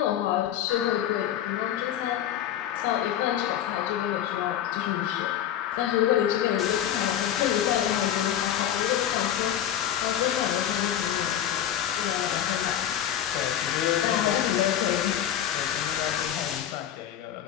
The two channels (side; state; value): right; quieter; 10.7 dB